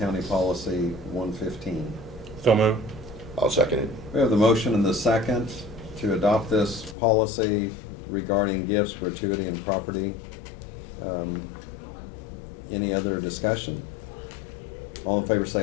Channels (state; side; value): drops out; right; at 7.0 s